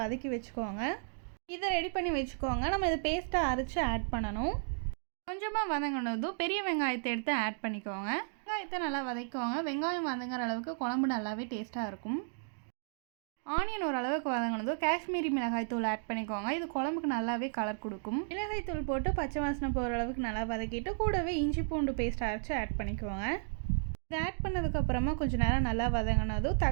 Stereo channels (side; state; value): left; silent; digital silence